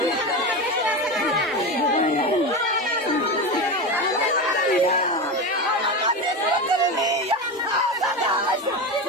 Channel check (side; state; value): both; normal; correlation 0.20